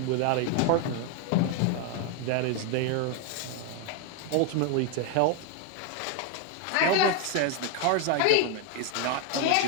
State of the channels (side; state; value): both; different; correlation 0.01